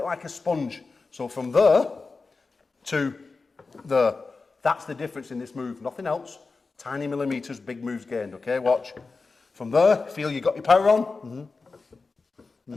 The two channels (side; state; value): right; quieter; 4.1 dB